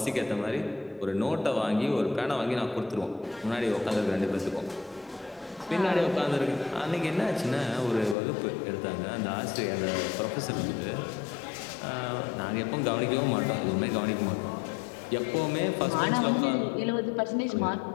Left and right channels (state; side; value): drops out; right; at 8.2 s